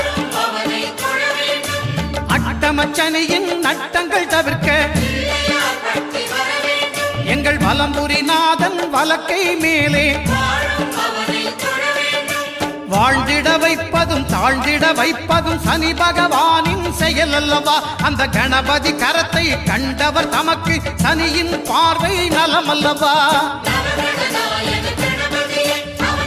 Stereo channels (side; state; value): both; identical; correlation 1.00